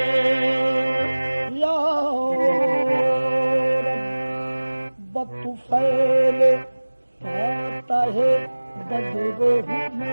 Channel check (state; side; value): inverted; both; correlation -1.00